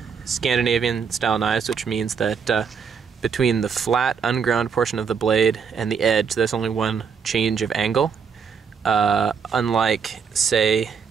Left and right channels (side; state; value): left; quieter; 6.4 dB